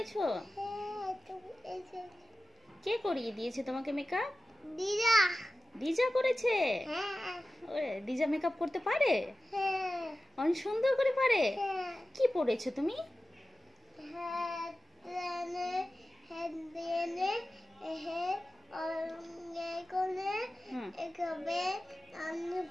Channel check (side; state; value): both; normal; correlation 0.95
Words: কে করিয়ে দিয়েছে তোমাকে মেকআপ? দিদা। দিজা করেছে? হ্যাঁ। ওরে, দিজা মেকআপ করতে পারে? হ্যাঁ। অনেক সুন্দর করে পারে। হ্যাঁ। কি পরেছো তুমি?